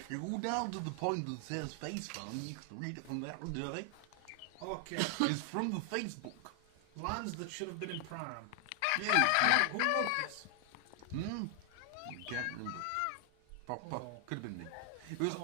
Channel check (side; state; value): both; different; correlation 0.00